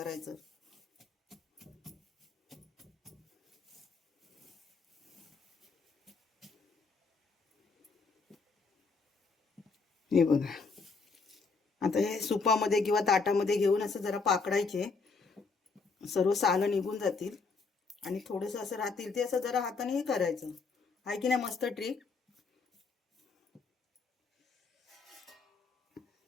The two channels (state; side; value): quieter; right; 4.5 dB